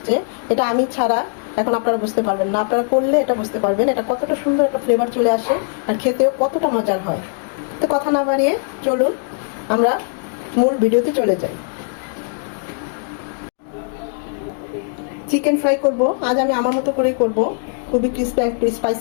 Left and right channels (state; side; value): silent; right; digital silence